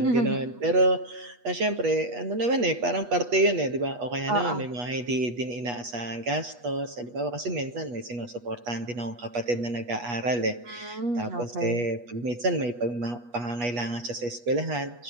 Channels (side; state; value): left; late; 8.3 ms